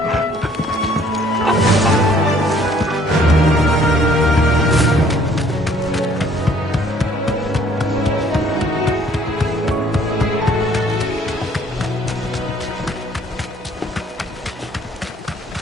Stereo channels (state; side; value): normal; both; correlation 0.60